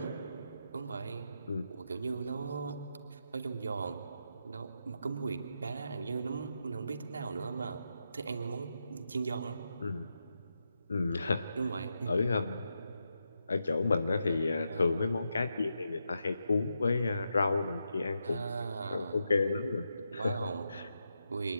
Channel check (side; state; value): both; inverted; correlation -0.85